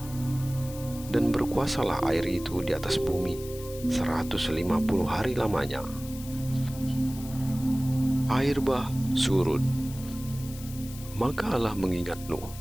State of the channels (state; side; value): noise; left; hiss, 16 dB below the sound